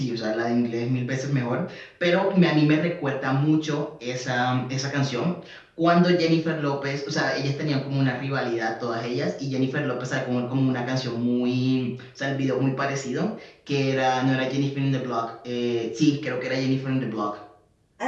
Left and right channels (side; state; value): both; identical; correlation 1.00